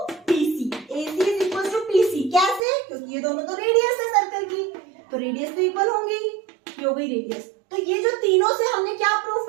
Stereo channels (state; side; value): drops out; left; at 2.6 s